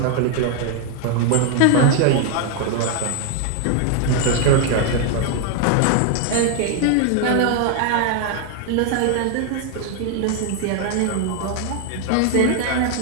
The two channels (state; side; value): different; both; correlation 0.00